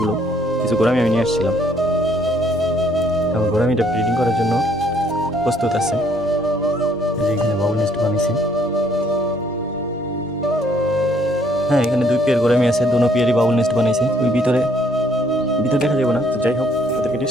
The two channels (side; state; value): both; normal; correlation 0.65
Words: কিছু গোরামি আমি নিয়ে আসছিলাম, এবং গোরামিটা ব্রিডিং করার জন্য প্রস্তুত আছে। যে এখানে বাবুল নেস্ট বানিয়েছি, হ্যাঁ এখানে 2 পেয়ার গোরামি আছে, দুনো পেয়ারই বাবুল নেস্ট বানিয়েছে। ওই ভিতরে দেখা যাবে না, তো যাই হোক ওদেরকে